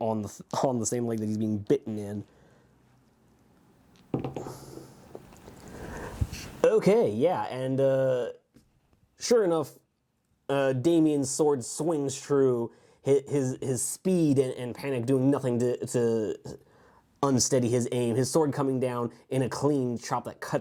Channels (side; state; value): both; identical; correlation 1.00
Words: the same leg that he's being bitten in. Okay, yeah, and sure enough, Damien's sword swings true. His speed and panic doing nothing to unsteady his aim. His sword coming down in a clean chop that